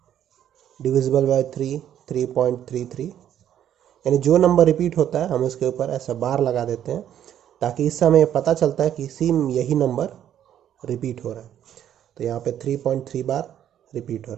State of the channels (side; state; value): left; quieter; 10.4 dB